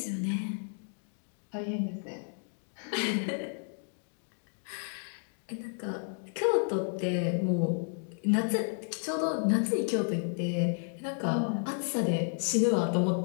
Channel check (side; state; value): right; silent; 56 dB below the other